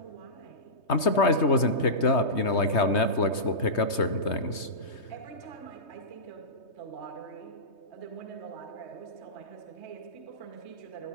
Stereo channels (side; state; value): right; late; 3.2 ms